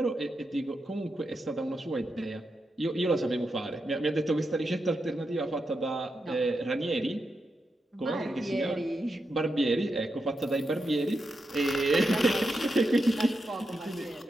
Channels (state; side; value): normal; both; correlation 0.86